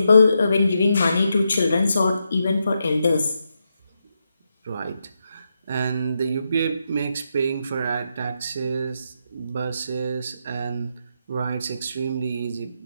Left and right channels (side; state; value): both; inverted; correlation -0.83